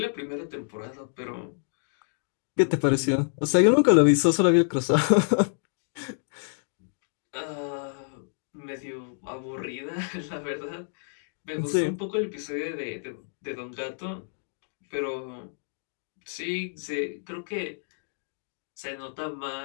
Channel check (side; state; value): right; silent; digital silence